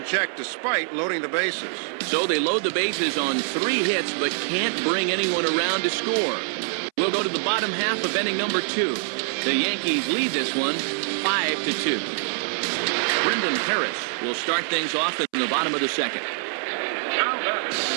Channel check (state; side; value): silent; left; 62 dB below the other